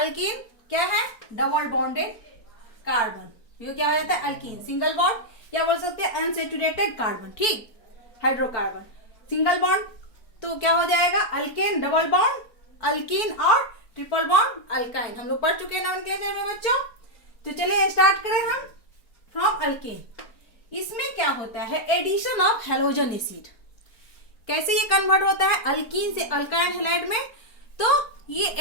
क्या है? Double bonded carbon. ये क्या हो जाता है? अल्कीन। सिंगल बॉन्ड या बोल सकते हैं अनसेचुरेटेड कार्बन। ठीक, हाइड्रोकार्बन। सिंगल बॉन्ड तो क्या हो जाएगा? अल्केन। डबल बॉन्ड अल्कीन और ट्रिपल बॉन्ड अल्काइन। हम लोग पढ़ चुके हैं नोमेनक्लेचर में बच्चों। तो चलिए स्टार्ट करें हम। फ्रॉम अल्केन, इसमें क्या होता है? Addition of halogen acid. कैसे ये कन्वर्ट होता है अल्कीन से अल्काइल हैलाइड में? तो ये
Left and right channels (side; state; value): right; late; 4.3 ms